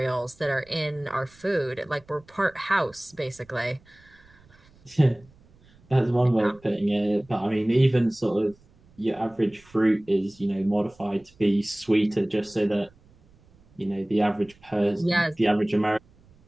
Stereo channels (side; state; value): right; noise; rumble, 29 dB below the sound